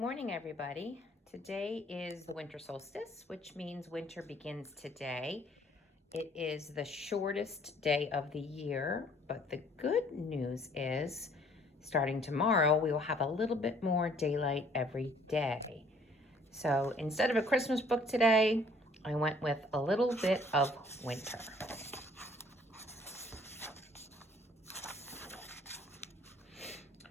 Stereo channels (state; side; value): normal; both; correlation 0.59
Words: everybody. Today is the winter solstice, which means winter begins today. It is the shortest day of the year, but the good news is starting tomorrow, we will have a little bit more daylight every day. So instead of a Christmas book today, I went with a little bit of winter.